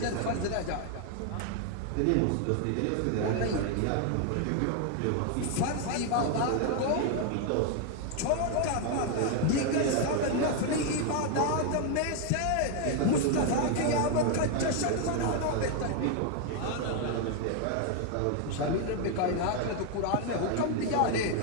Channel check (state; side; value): different; both; correlation 0.01